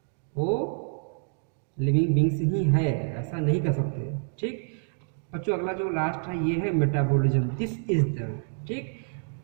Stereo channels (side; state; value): left; silent; digital silence